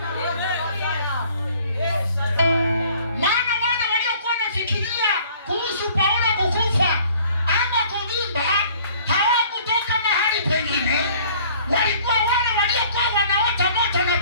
Maana wale waliokuwa wanafikiria kuhusu Paulo kukufa ama kuvimba hawakutoka mahali pengine, walikuwa wale waliokuwa wanaota moto na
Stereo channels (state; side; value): inverted; both; correlation -0.54